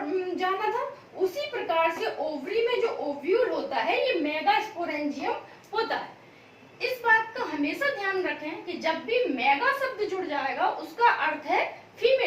में जाना था, उसी प्रकार से ओवरी में जो ओव्यूल होता है ये मेगास्पोरेंजियम होता है। इस बात का हमेशा ध्यान रखें कि जब भी मेगा शब्द जुड़ जाएगा उसका अर्थ है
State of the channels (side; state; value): both; identical; correlation 1.00